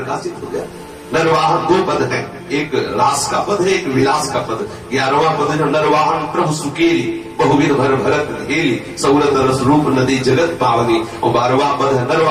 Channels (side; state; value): both; identical; correlation 1.00